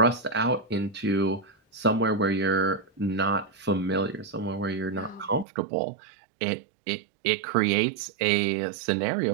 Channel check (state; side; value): drops out; left; at 5.5 s